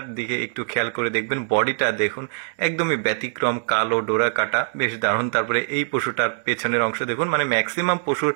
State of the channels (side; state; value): left; silent; digital silence